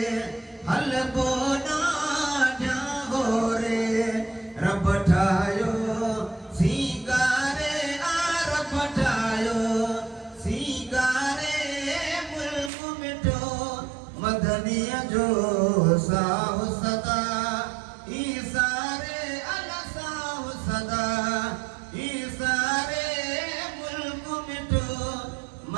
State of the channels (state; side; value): drops out; left; at 12.7 s